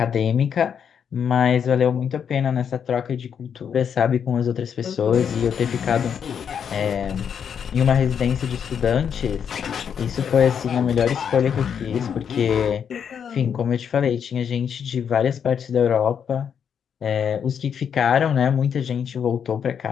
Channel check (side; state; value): right; quieter; 7.7 dB